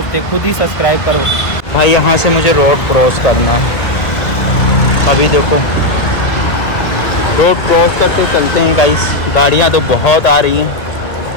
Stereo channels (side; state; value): right; late; 1.9 ms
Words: खुद ही सब्सक्राइब करो भाई। यहाँ से मुझे रोड क्रॉस करना है, अभी देखो रोड क्रॉस करते चलते हैं गाइस। गाड़ियाँ तो बहुत आ रही हैं,